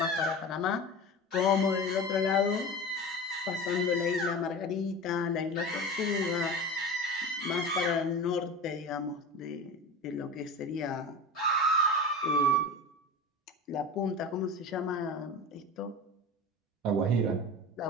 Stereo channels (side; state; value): both; normal; correlation 0.31